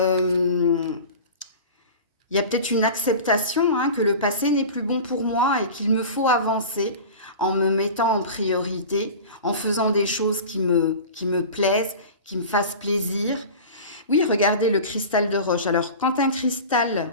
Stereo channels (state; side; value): inverted; both; correlation -0.34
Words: y a peut-être une acceptation hein, que le passé n'est plus bon pour moi et qu'il me faut avancer en me mettant en priorité, en faisant des choses qui me plaisent, qui me fassent plaisir. Oui, regardez le cristal de roche. Alors, quand un